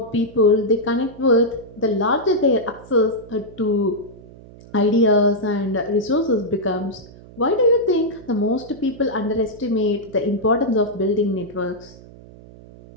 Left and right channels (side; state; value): right; noise; hum, 20 dB below the sound